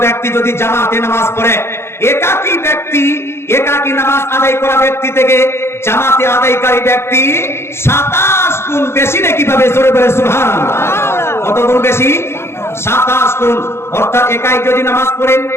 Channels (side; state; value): right; late; 0.12 ms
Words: ব্যক্তি যদি জামাতে নামাজ পড়ে, একাকী নামাজ আদায় করা ব্যক্তি থেকে জামাতে আদায়কারী ব্যক্তি 27 গুণ বেশি নেকি পাবে। জোরে বলে সুবহানাল্লাহ। কত গুণ বেশি? 27 গুণ। অর্থাৎ একাই যদি নামাজ পড়েন